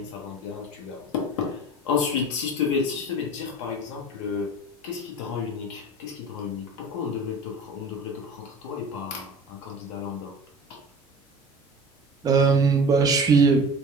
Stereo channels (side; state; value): both; normal; correlation 0.38